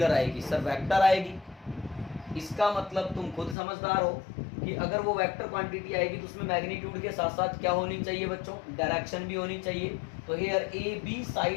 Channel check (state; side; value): drops out; right; at 3.6 s